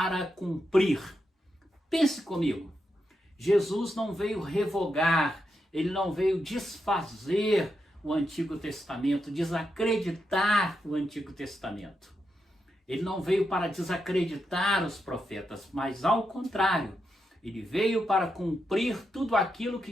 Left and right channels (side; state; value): both; normal; correlation 0.85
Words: cumprir. Pense comigo, Jesus não veio revogar, ele não veio desfazer o Antigo Testamento, desacreditar o Antigo Testamento. Ele não veio para desacreditar os profetas, mas ao contrário, ele veio para cumprir tudo aquilo que